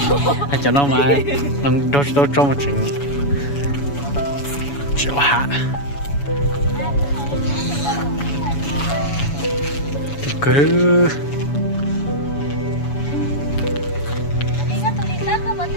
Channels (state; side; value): late; right; 7.1 ms